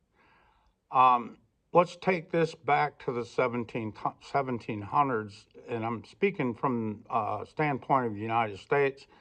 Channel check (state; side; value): identical; both; correlation 1.00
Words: Let's take this back to the 1700s, and I'm speaking from a standpoint of the United States.